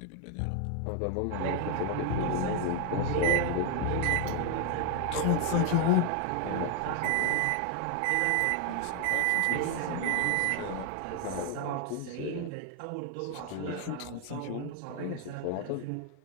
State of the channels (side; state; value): both; different; correlation 0.01